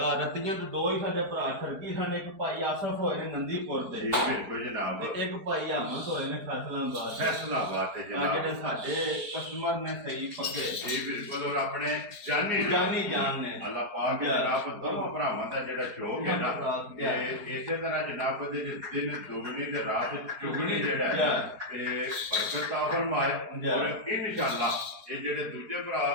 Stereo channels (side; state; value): left; late; 4.6 ms